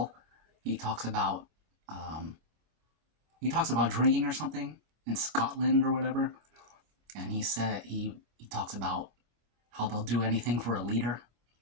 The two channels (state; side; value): late; left; 25 ms